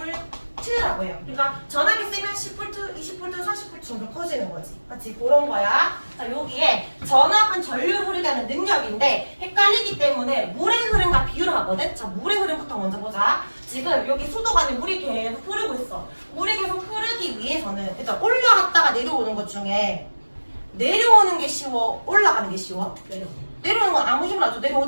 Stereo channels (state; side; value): inverted; both; correlation -1.00